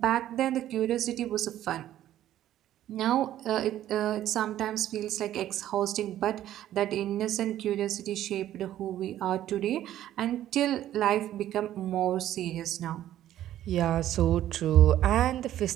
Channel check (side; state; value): left; quieter; 12.5 dB